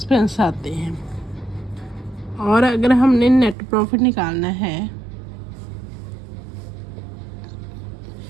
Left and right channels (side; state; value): left; drops out; at 3.6 s